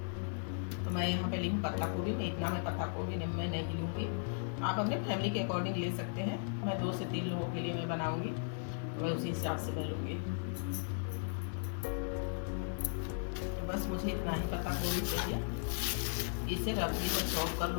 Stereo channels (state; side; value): silent; right; digital silence